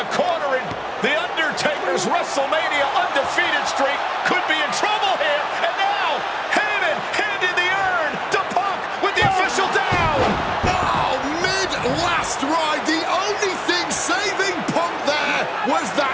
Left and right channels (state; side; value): identical; both; correlation 1.00